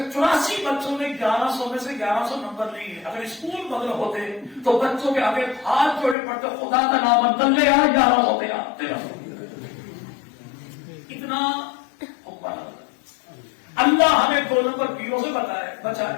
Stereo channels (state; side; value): drops out; right; at 6.2 s